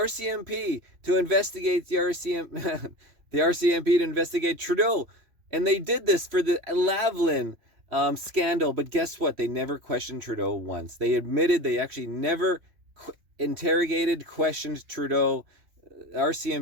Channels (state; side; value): late; left; 3.0 ms